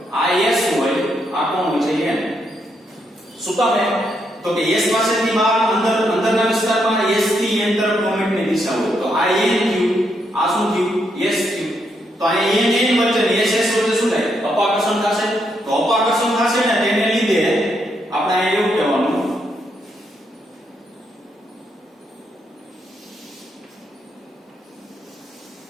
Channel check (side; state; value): both; normal; correlation 0.78